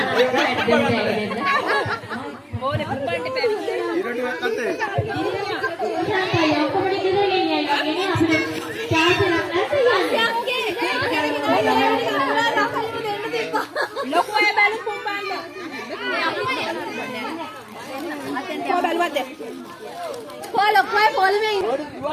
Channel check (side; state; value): both; identical; correlation 1.00